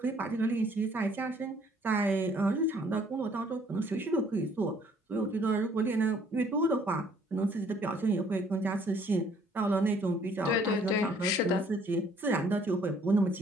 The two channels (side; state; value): both; normal; correlation 0.61